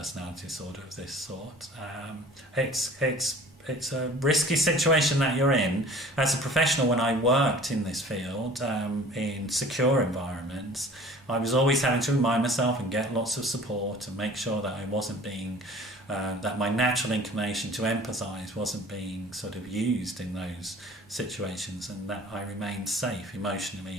disorder of this sort, it's a risky situation that you're in. As a professional, when I worked in this field, in secure environments, I was always having to remind myself and get lots of support and make sure that I wasn't being, that my natural inclination to empathise wasn't being sort of used in those situations, and that I remained safe emotionally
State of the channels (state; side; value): normal; both; correlation 0.47